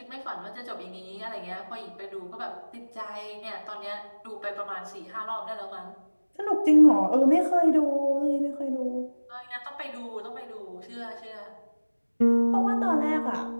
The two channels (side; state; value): both; inverted; correlation -1.00